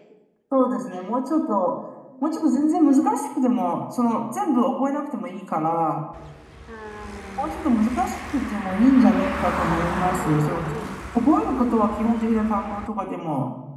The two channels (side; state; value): both; identical; correlation 1.00